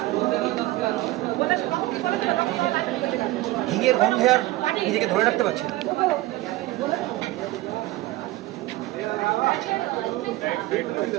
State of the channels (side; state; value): left; quieter; 17.8 dB